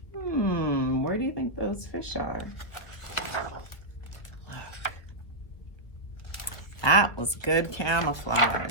Where do you think those fish are? Look. That was good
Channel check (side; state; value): right; late; 1.6 ms